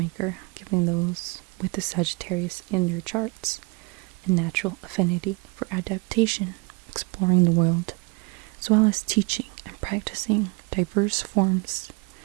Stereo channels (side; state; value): left; quieter; 28.5 dB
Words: giving those with the Sagittarius in their charts a natural affinity for adaptation, exploring the world, as well as teaching and practicing diverse forms